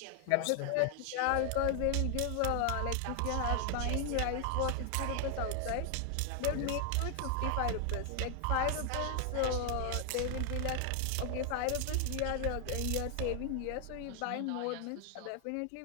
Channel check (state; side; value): different; both; correlation 0.00